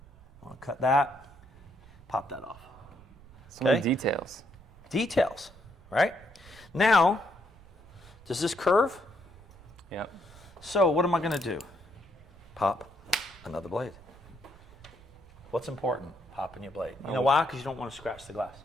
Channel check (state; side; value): noise; right; rumble, 22 dB below the sound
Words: I want to cut that, pop that off. So many Okay. details. Details, right? Now, does this curve? Yep. So what am I going to do? Pop another blade. What's important? Popping your blade. You know why? Because you don't want to scratch the glass.